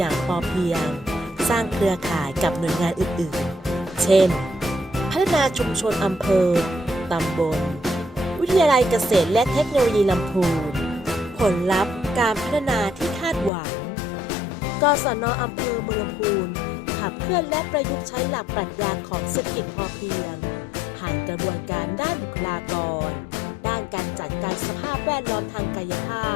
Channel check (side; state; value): right; drops out; at 13.5 s